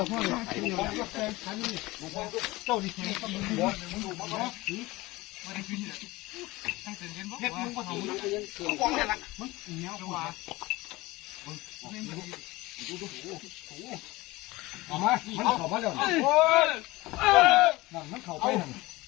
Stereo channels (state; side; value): quieter; right; 20.5 dB